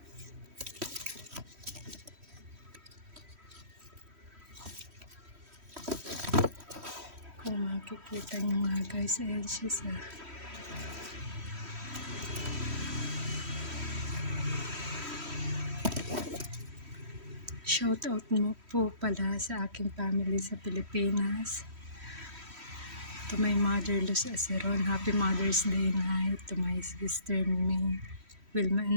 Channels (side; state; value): left; late; 3.1 ms